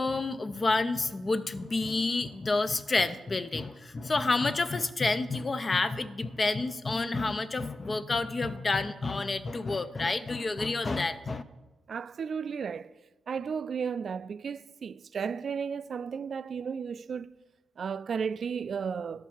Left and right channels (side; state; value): both; normal; correlation 0.90